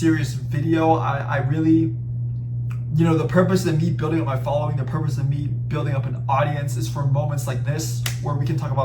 video. I really, you know, the purpose of me building up my following, the purpose of me building up an audience is for moments like this where we can talk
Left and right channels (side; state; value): both; identical; correlation 1.00